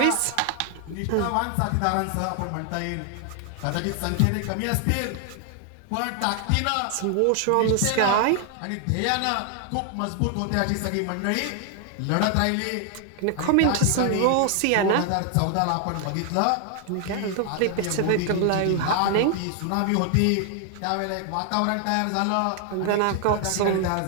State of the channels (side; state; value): both; different; correlation 0.00